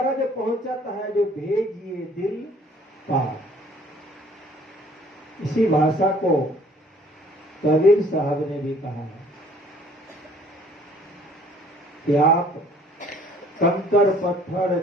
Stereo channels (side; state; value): both; normal; correlation 0.56